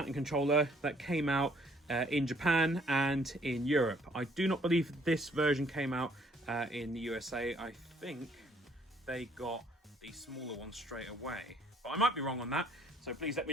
controller that came out in Japan and in Europe. I do not believe this version came out in the USA. I think they got the smaller one straight away, but I might be wrong on that, so please let me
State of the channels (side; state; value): both; normal; correlation 0.64